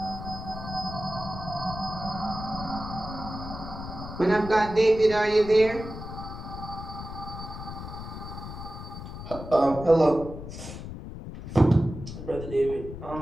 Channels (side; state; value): left; noise; rumble, 10 dB below the sound